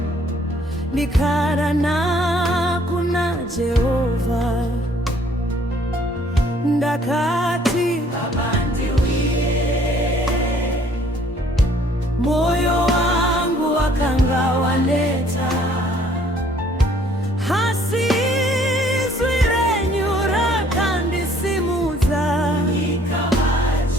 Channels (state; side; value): normal; both; correlation 0.61